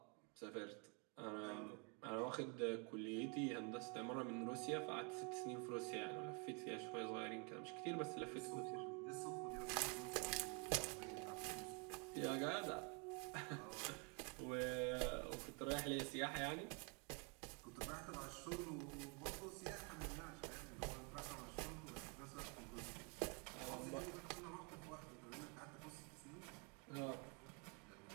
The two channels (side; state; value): left; quieter; 34.1 dB